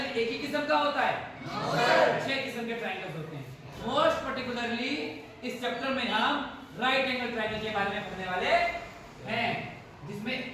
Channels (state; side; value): identical; both; correlation 1.00